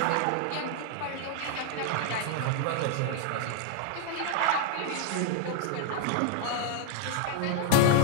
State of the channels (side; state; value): both; different; correlation -0.01